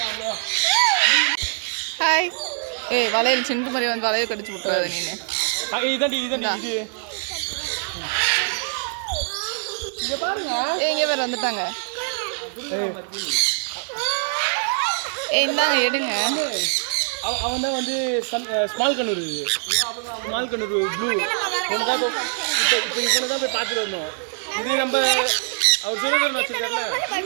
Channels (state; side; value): silent; left; digital silence